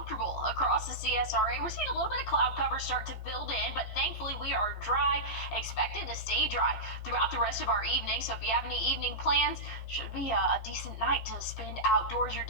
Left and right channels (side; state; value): right; late; 15 ms